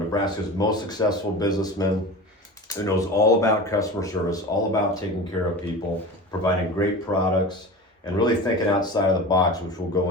most successful businessmen who knows all about customer service, all about taking care of people, providing great products, and really thinking outside of the box, which we'll go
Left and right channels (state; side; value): normal; both; correlation 0.32